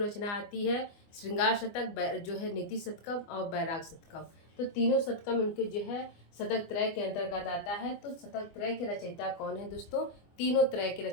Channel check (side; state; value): right; late; 24 ms